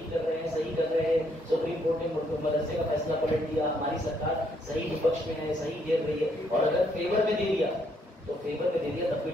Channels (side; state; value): both; normal; correlation 0.71